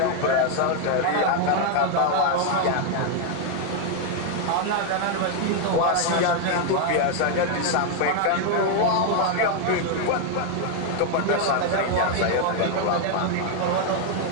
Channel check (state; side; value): different; both; correlation 0.01